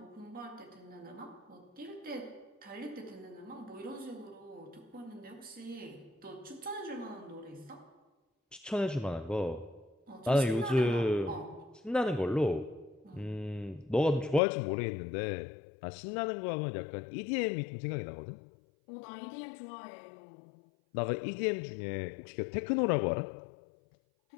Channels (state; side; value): drops out; right; at 14.4 s